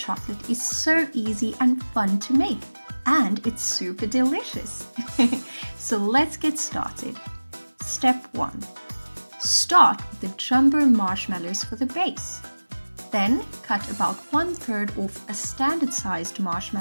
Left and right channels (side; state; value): both; inverted; correlation -1.00